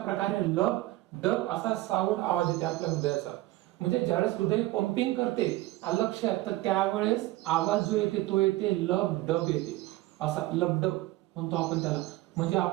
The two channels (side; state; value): left; quieter; 17.8 dB